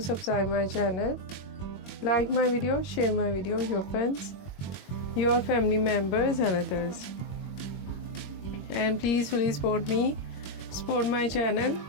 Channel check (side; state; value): right; late; 21 ms